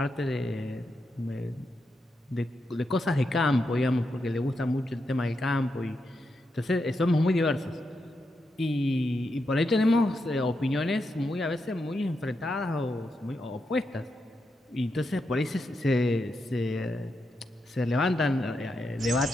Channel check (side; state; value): both; normal; correlation 0.85